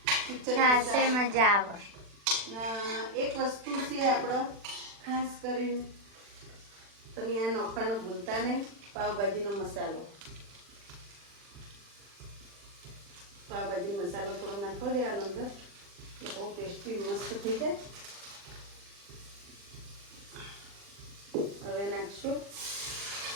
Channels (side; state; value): left; late; 40 ms